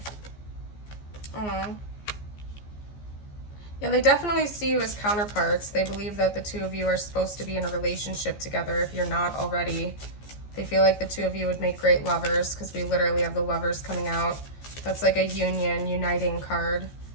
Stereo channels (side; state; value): right; late; 14 ms